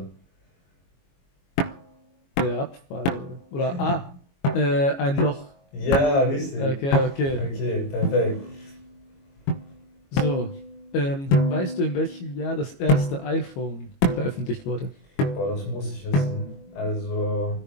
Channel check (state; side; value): late; right; 22 ms